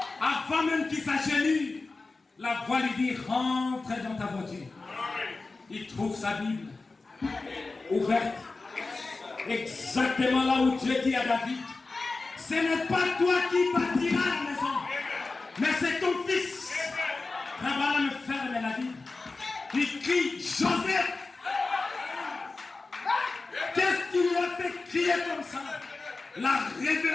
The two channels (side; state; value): right; quieter; 3.7 dB